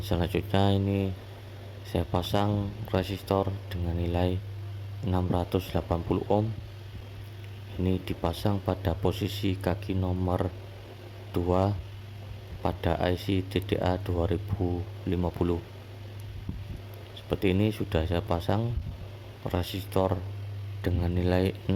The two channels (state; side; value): identical; both; correlation 1.00